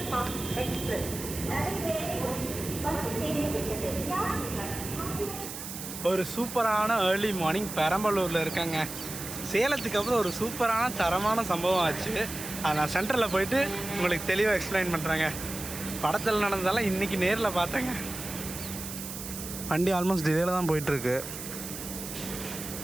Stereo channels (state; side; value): noise; right; hiss, 9 dB below the sound